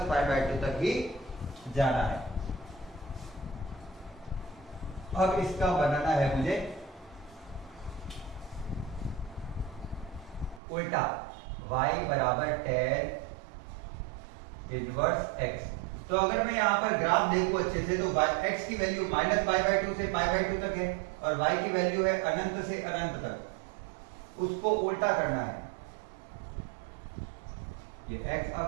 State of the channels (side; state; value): left; drops out; at 10.6 s